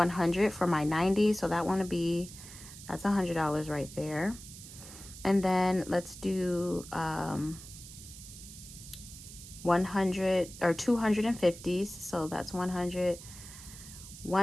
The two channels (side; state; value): right; noise; hiss, 15 dB below the sound